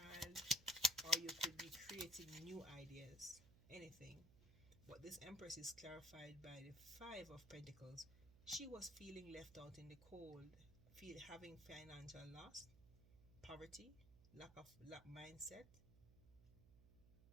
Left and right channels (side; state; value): right; noise; hum, 21 dB below the sound